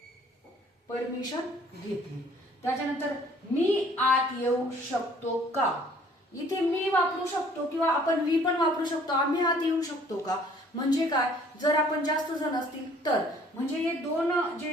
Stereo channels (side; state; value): both; normal; correlation 0.57